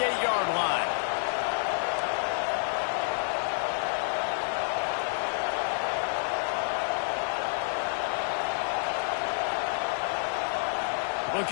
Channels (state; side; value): silent; right; 59 dB below the other